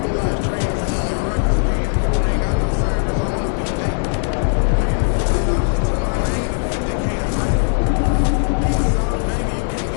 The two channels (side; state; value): right; silent; digital silence